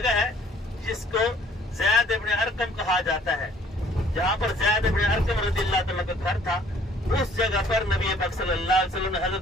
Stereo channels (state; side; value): normal; both; correlation 0.58